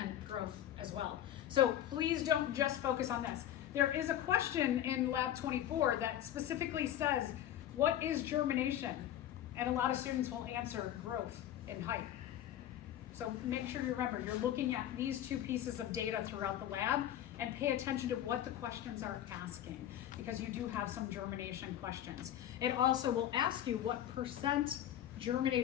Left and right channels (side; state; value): right; quieter; 11.6 dB